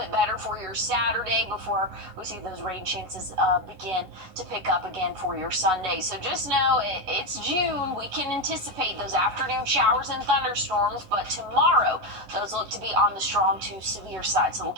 better for your Saturday before we see those rain chances begin to pick up again for your Sunday. So just know it's June. We can anticipate those afternoon showers and thunderstorms, but tomorrow those look to be on the strong to severe side. So we'll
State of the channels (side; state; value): left; late; 11 ms